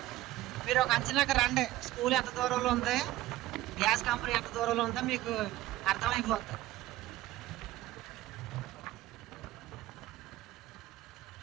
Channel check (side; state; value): left; quieter; 15.7 dB